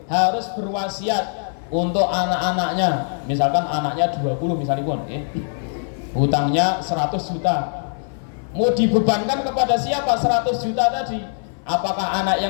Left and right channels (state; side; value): silent; right; 57 dB below the other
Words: harus berwasiat untuk anak-anaknya, misalkan anaknya 20 misalipun hutangnya 100 juta, mau dibebankan kepada siapa 100 juta tadi? Apakah anak